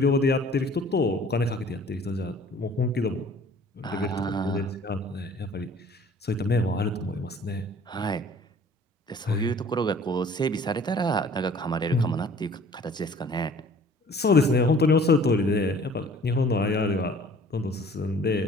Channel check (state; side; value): normal; both; correlation 0.51